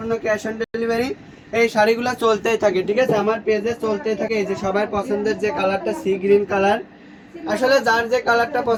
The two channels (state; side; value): identical; both; correlation 1.00